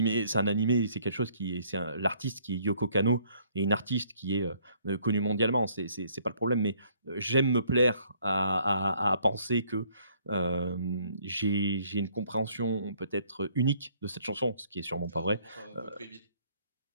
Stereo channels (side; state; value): both; inverted; correlation -0.63